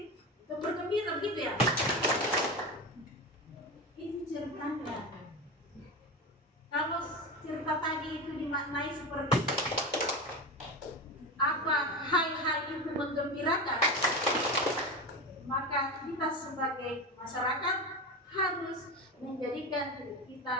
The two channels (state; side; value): normal; both; correlation 0.22